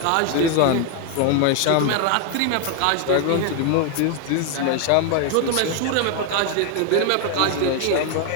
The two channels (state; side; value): different; both; correlation 0.01